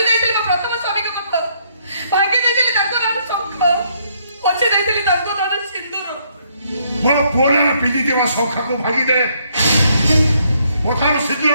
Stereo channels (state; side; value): inverted; both; correlation -0.70